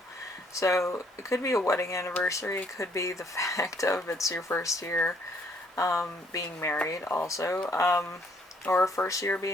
So it could be a wedding anniversary. It could be the fact of it's your first year being married also, or first year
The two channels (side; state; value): both; normal; correlation 0.66